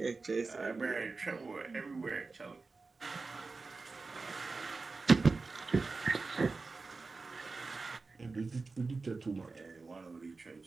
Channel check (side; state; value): left; quieter; 4.0 dB